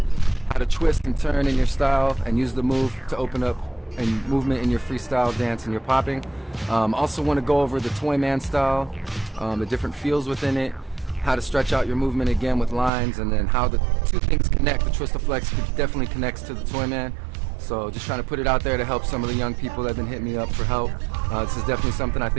how to twist and turn in your style and use the move to open up and movement in your freestyle dance and your popping. Also want to go over the Toyman style, the different feels within it, how to stretch out your movement again with lines, and then how the two things connect. The Twist-A-Flex definitely connects to the Toyman. So just trying to put it out there to help some of the young people that have been hitting me up for help. This is definitely something I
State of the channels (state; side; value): drops out; left; at 12.9 s